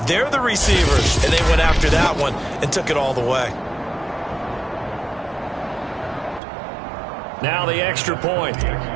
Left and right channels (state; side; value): drops out; left; at 6.4 s